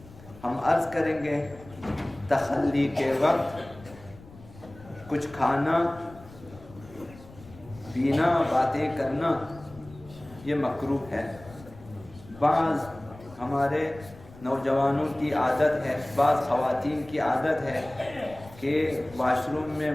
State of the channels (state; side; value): noise; left; rumble, 20 dB below the sound